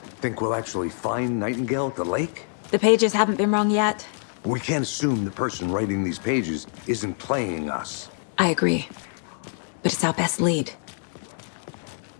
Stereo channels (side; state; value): right; silent; digital silence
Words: Think we'll actually find Nightingale at the lake? The pages haven't been wrong yet. We can't assume the person writing these pages isn't playing us. I agree. But it's our best lead.